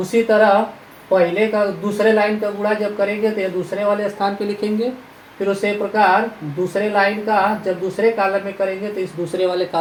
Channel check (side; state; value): both; identical; correlation 1.00